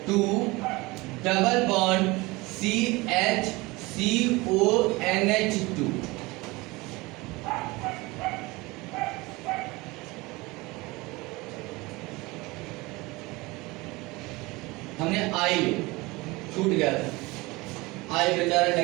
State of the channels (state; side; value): quieter; left; 22.8 dB